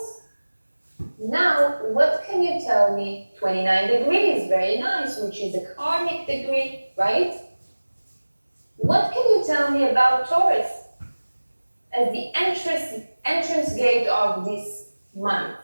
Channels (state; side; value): inverted; both; correlation -1.00